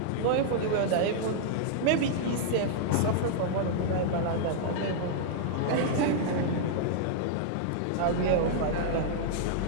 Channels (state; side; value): different; both; correlation -0.01